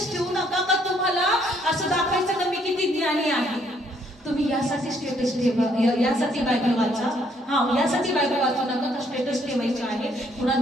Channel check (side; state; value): both; normal; correlation 0.67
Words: ठेवू नका का तुम्हाला असं दाखवायचं का मी किती ज्ञानी आहे. तुम्ही यासाठी स्टेटस ठेवा, यासाठी बायबल वाचा. यासाठी बायबल वाचू नका का स्टेटस ठेवायचे आहे,